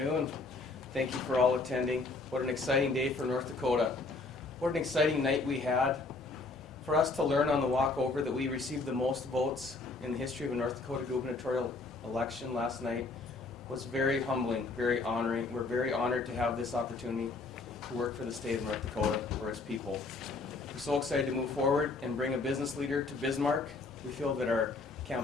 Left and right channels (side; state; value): right; quieter; 3.6 dB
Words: Thank you for all attending. What an exciting day for North Dakota. What an exciting night we had. For us to learn on the walk over that we received the most votes in the history of a North Dakota gubernatorial election last night was very humbling, very honoring. We're very honored to have this opportunity to work for the state of North Dakota, for its people. We're so excited to move forward and bring a business leader to Bismarck. We feel that our